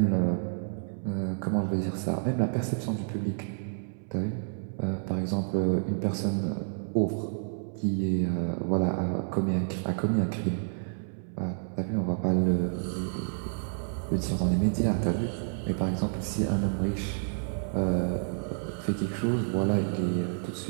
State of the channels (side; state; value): left; silent; 58 dB below the other